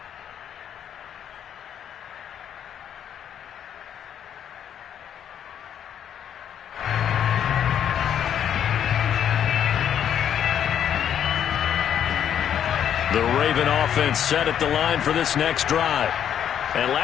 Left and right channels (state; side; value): quieter; right; 9.3 dB